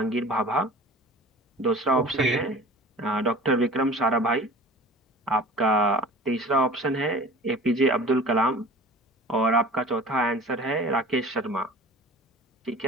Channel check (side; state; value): both; normal; correlation 0.42